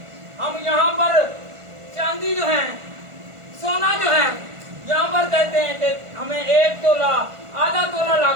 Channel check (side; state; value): left; late; 1.5 ms